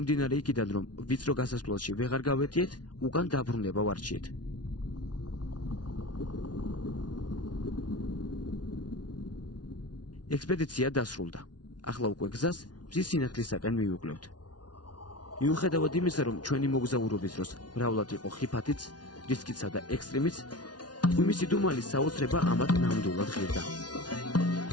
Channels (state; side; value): late; right; 0.69 ms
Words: იქიდან, რომ ვიწრო გასასვლელში ვეღარ გავეტიეთ, უკან დაბრუნება ვარჩიეთ. ექსპედიცია დასრულდა. ახლა უკვე გზას მზის სინათლისაკენ მივუკლევთ. მიუხედავად იმისა, რომ ჩვენი მოგზაურობის დროს მრავლად იყო ხიფათიც, რისკიცა და ექსტრემიც, გვიმის იდუმალის საოცრება ამათ ნამდვილად ღირდა.